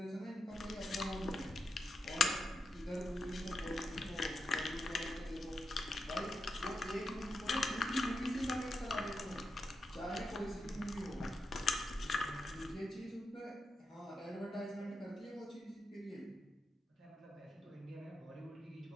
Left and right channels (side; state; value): both; normal; correlation 0.86